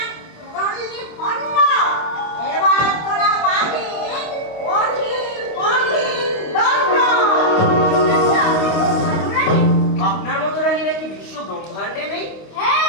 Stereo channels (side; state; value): right; late; 25 ms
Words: আপনার মতো রানী নাকি বিশ্ব ব্রহ্মাণ্ডে নেই?